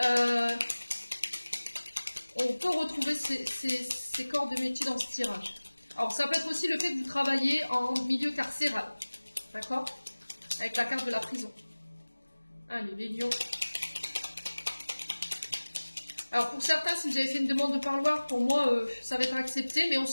On peut retrouver ces corps de métier dans ce tirage. Alors, ça peut être aussi le fait que vous travaillez en milieu carcéral. D'accord? Avec la carte de la prison. Allez, les lions. Alors, pour certains, si vous avez fait une demande de parloir, pour moi, ça va être accepté. Mais on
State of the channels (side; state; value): both; inverted; correlation -1.00